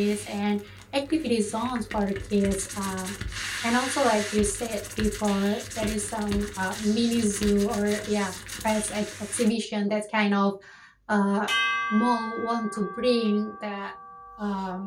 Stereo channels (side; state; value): both; identical; correlation 1.00